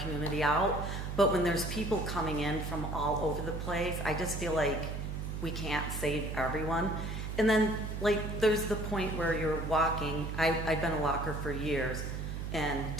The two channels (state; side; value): noise; right; hum, 5 dB below the sound